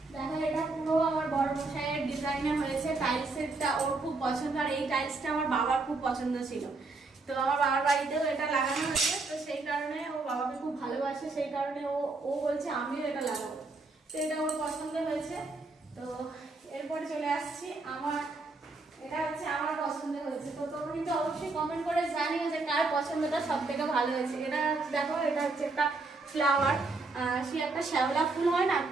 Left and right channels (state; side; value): quieter; left; 3.5 dB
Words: দেখো, এটা পুরো আমার বড় মশাইয়ের ডিজাইনে হয়েছে। টাইলসেরটা ওর খুব পছন্দ, আর এই টাইলসটা আমার বাবার খুব পছন্দ ছিল। তো আমার বাবার বাড়িতেও এটা লাগানো হয়েছে। তো সেই কারণে ও বাবাকে খুব ভালোবাসে, সেই কারণে ও বলছে আমিও এটা লাগাবো। তো এটা ওর পছন্দ হয়েছে। তো এরপরে চলে আসছি আমার, এটা হচ্ছে আমার পছন্দ হয়েছে। তো তোমরা কিন্তু অবশ্যই কমেন্ট করে জানিও যে কার পছন্দটা সব থেকে ভালো হয়েছে। এটা দেখো, এটা হচ্ছে একটা ফ্লাওয়ার, সে একটা শ্যাওলা ফুল হয় না,